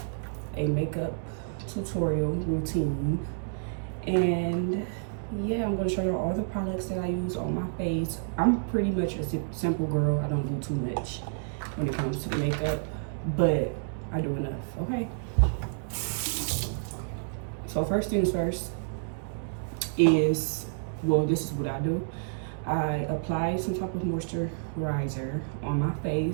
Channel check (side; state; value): left; silent; digital silence